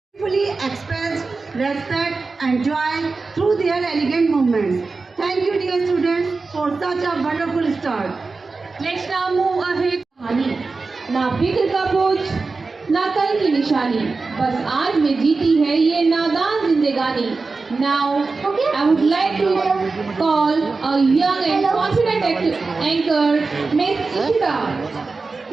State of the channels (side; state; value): left; quieter; 4.0 dB